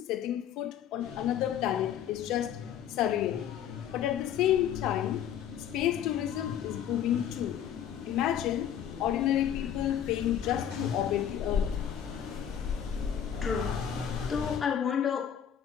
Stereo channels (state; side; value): quieter; right; 9.5 dB